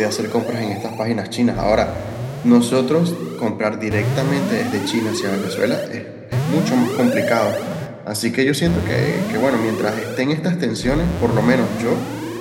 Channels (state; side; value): identical; both; correlation 1.00